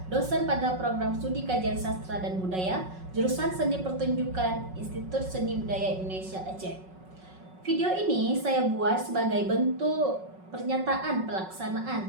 dosen pada program studi kajian sastra dan budaya, jurusan seni pertunjukan, Institut Seni Budaya Indonesia Aceh. Video ini saya buat sebagai bentuk pernyataan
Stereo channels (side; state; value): left; late; 5.4 ms